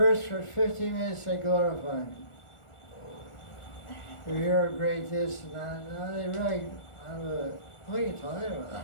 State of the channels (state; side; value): late; right; 1.4 ms